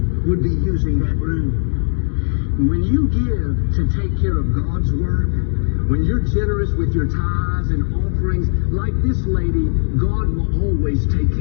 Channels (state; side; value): silent; right; digital silence